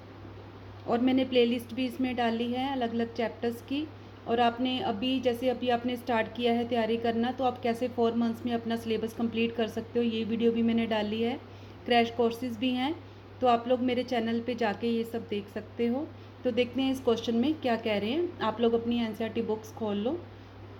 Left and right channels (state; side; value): identical; both; correlation 1.00